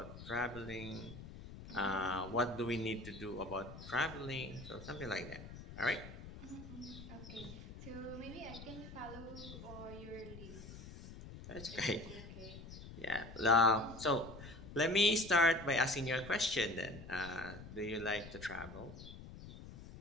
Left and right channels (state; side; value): noise; left; rumble, 13 dB below the sound